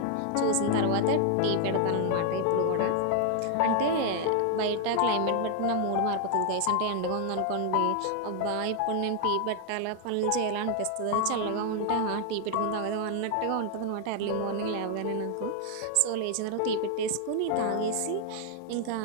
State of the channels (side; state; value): both; different; correlation 0.00